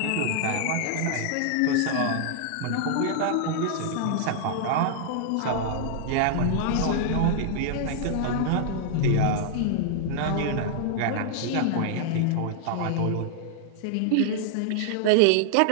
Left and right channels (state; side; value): different; both; correlation 0.00